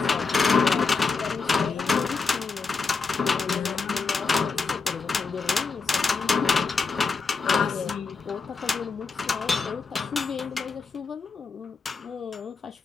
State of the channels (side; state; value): right; quieter; 4.7 dB